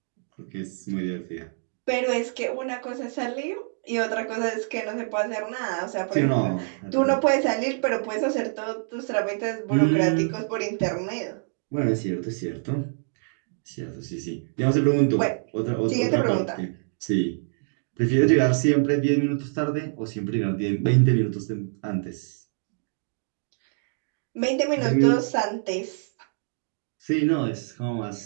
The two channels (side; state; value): left; silent; digital silence